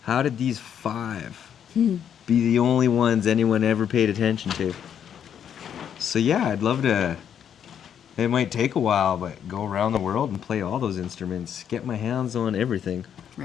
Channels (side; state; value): right; quieter; 8.8 dB